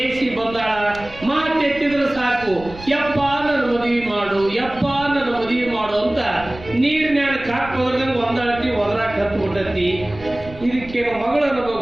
ಬಂದಾಳ, ಮಾತೆತ್ತಿದ್ರೆ ಸಾಕು, ಯಪ್ಪ ನನ್ನ ಮದುವೆ ಮಾಡು ಅಂತ ನೀರಿನ್ಯಾನ ಕಾಕ್ ಹೋದ್ರಂಗ ಒಂದಾಳತಿ ಒದರಾಕ್ ಹತ್ಬಿಟ್ಟತಿ. ಇದಕ್ಕೇನು ಮಗಳು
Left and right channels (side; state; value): right; noise; rumble, 17 dB below the sound